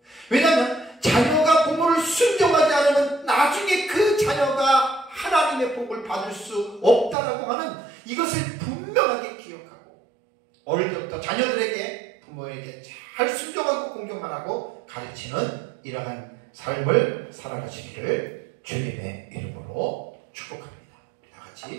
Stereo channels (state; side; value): drops out; left; at 7.2 s